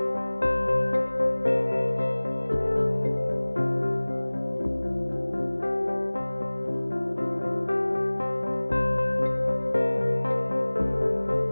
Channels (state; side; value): inverted; both; correlation -1.00